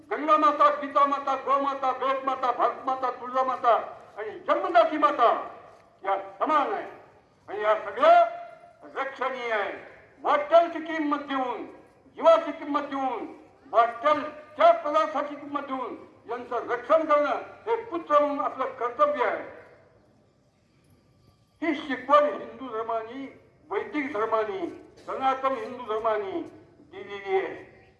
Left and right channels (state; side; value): identical; both; correlation 1.00